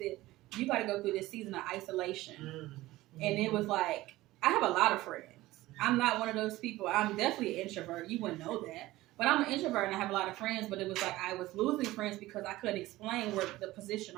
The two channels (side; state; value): left; quieter; 17.6 dB